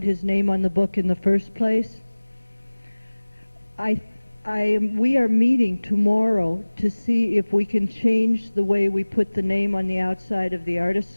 his name on the book in the first place? We are meeting tomorrow to see if we can change the way we put the name on the outside of The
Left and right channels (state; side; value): inverted; both; correlation -1.00